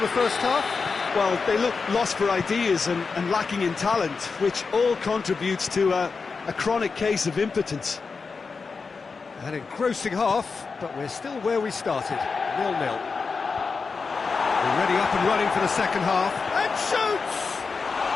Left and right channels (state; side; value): quieter; right; 4.8 dB